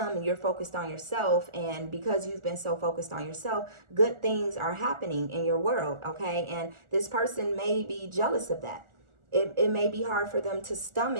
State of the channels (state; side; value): late; left; 1.4 ms